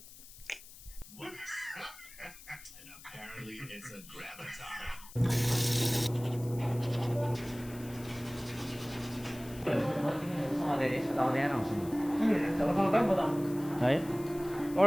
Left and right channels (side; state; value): left; noise; hiss, 18 dB below the sound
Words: And apparently it's a graviton. Right?